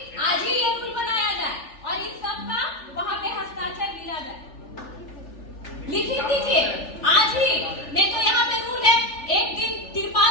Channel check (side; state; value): right; late; 3.4 ms